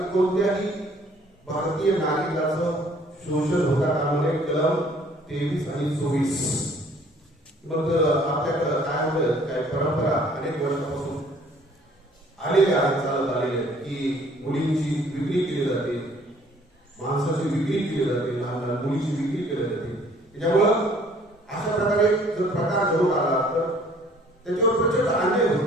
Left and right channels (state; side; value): normal; both; correlation 0.58